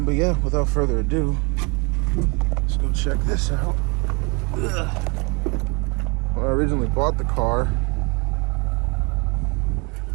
yeah, without further ado, let's go check this out. When I originally bought the car,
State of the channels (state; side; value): quieter; left; 30.0 dB